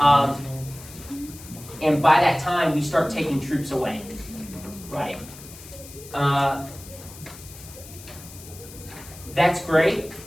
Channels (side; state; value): left; noise; hiss, 17 dB below the sound